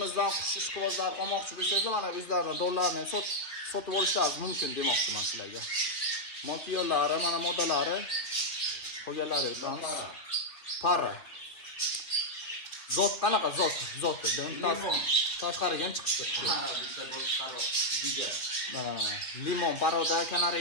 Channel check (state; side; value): late; right; 2.6 ms